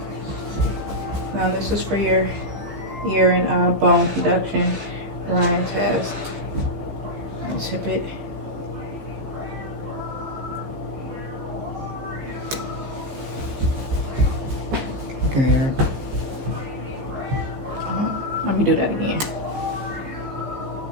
Now this is for your ear and bone conduction Ryan test. Let's tip it. I can hear it. Let me do that again.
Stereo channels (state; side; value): late; left; 15 ms